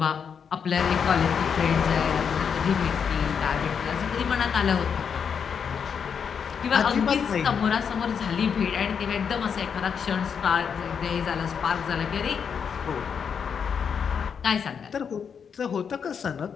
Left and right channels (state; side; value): quieter; right; 6.9 dB